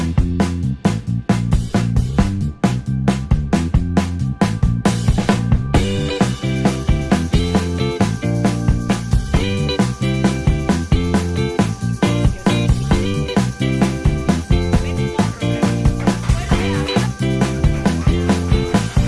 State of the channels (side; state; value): both; identical; correlation 1.00